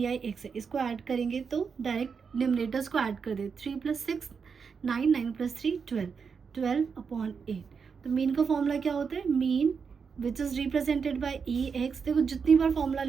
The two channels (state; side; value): quieter; left; 5.9 dB